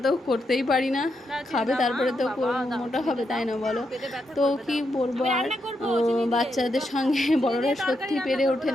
তো করতেই পারি না, খাবে তারপরে তো মোটা হবে, তাই না বলো? তো কি বলবো আর, বাচ্চাদের সঙ্গে বড়রা সত্যি পেরে ওঠে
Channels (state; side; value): normal; both; correlation 0.82